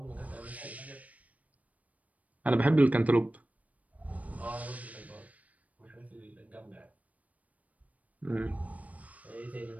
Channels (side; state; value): left; late; 0.070 ms